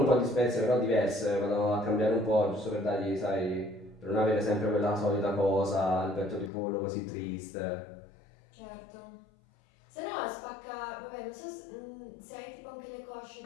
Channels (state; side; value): drops out; right; at 6.5 s